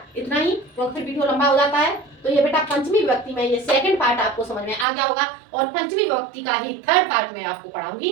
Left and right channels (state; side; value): drops out; left; at 4.9 s